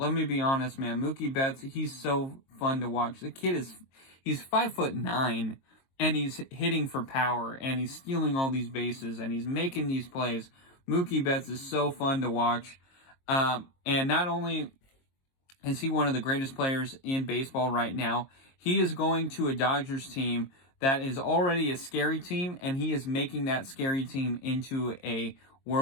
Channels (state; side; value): late; right; 22 ms